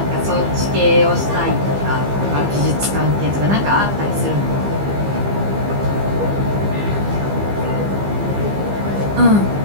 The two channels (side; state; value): left; late; 15 ms